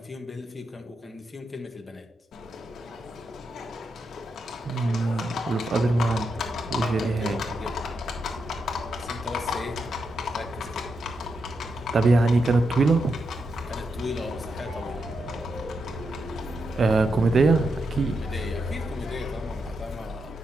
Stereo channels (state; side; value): normal; both; correlation 0.84